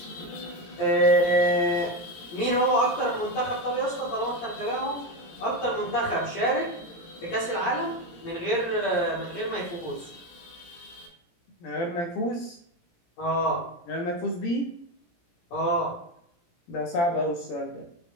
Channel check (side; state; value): right; late; 17 ms